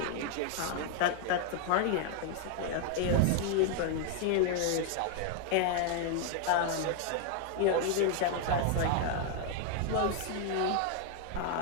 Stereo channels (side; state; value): both; different; correlation 0.00